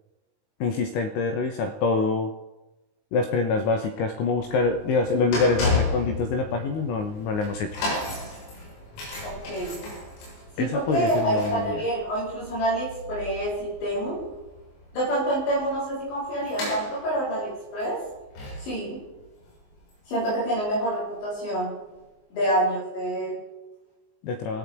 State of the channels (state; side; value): late; right; 19 ms